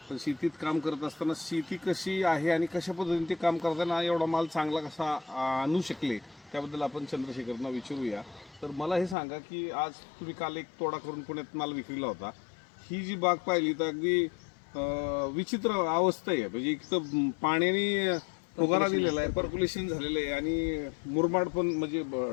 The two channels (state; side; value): drops out; right; at 9.2 s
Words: पण शेतीत काम करत असताना शेती कशी आहे आणि कशा पद्धतीने ते काम करताना एवढा माल चांगला कसा आणू शकले त्याबद्दल आपण चंद्रशेखरना विचारूया. तर मला हे सांगा की आज तुम्ही काल एक तोडा करून पुण्यात माल विक्रीला होता. ही जी बाग पाहिली तर अगदी विचित्र अवस्था आहे. म्हणजे एक तर पाण्याने फुगारा दिलेला आहे, पर्क्युलेशन झालेलं आहे आणि मुरमाड पण म्हणजे